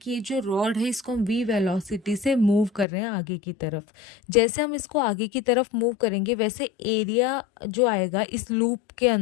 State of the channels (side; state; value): right; drops out; at 2.9 s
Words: ये जो रॉड है इसको हम v वेलोसिटी से मूव कर रहे हैं आगे की तरफ. जैसे हम इसको आगे की तरफ मूव करेंगे वैसे एरिया जो आएगा इस लूप के